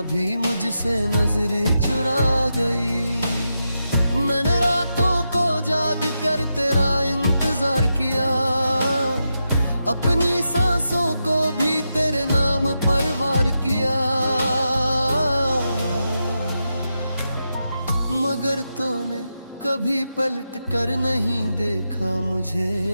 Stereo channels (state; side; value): inverted; both; correlation -0.87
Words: भी मुझसे नजरें चुरा गई। मैंने रातों को जाग कर तेरा इंतजार किया। अपनी सांसों को भी तेरे नाम पर वार किया। मगर तूने कभी पलट कर नहीं देखा मुझे।